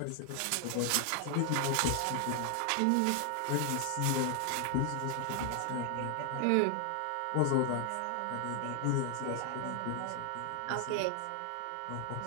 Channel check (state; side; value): different; both; correlation 0.00